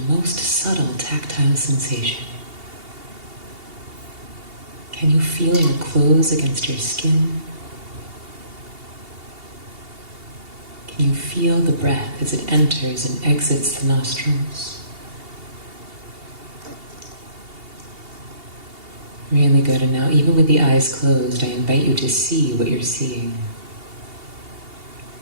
most subtle tactile sensation. Can you feel your clothes against your skin? Can you feel the breath as it enters and exits the nostrils? Really good. And now, even with the eyes closed, I invite you to see what you're seeing.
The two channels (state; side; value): late; left; 2.8 ms